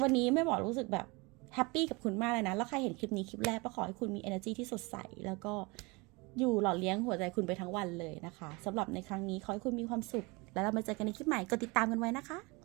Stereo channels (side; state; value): left; quieter; 26.5 dB